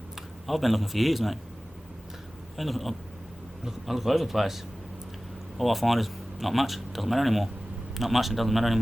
I've been looking for years, mate. I look all over the place. All I find is not much. Doesn't matter anymore. Not much. It doesn't matter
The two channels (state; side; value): normal; both; correlation 0.97